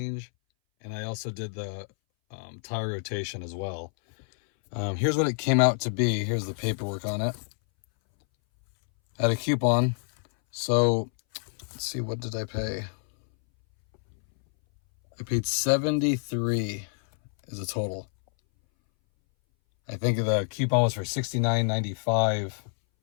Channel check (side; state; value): right; silent; 60 dB below the other